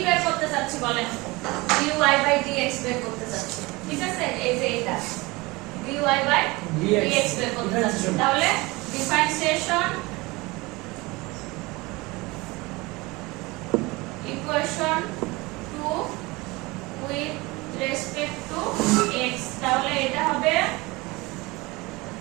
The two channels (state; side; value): quieter; left; 23.1 dB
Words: বের করতে চাচ্ছি বলেন dy বাই dx বের করতে চাচ্ছি ঠিক আছে এই যে এটা dy বাই dx বের করতে চাচ্ছি তাহলে differentiation equation 2 with respect to x তাহলে এটা হবে